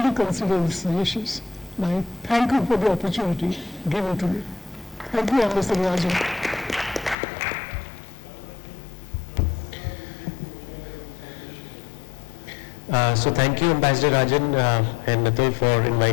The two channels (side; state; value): right; drops out; at 7.2 s